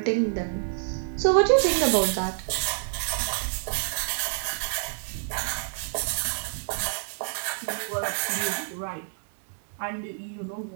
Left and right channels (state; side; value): silent; left; digital silence